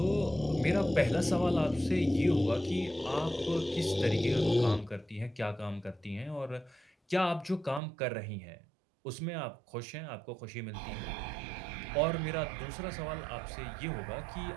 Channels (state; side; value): drops out; left; at 7.8 s